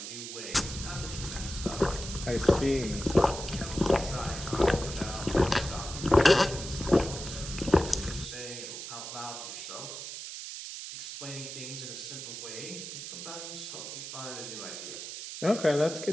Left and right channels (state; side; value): noise; right; hiss, 8 dB below the sound